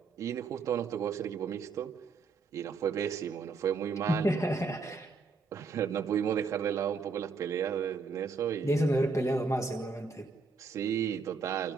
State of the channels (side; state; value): left; quieter; 4.3 dB